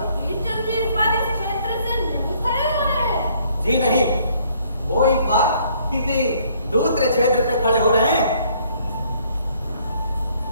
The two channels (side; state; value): both; inverted; correlation -0.64